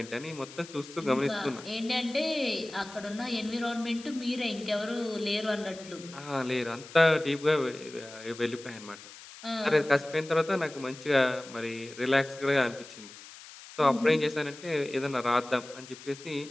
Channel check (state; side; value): noise; left; hiss, 17 dB below the sound